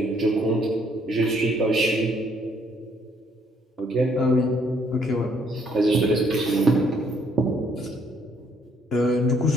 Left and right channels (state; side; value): normal; both; correlation 0.67